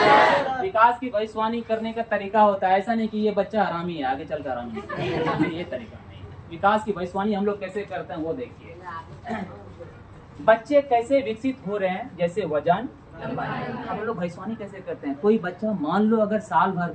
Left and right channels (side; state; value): both; identical; correlation 1.00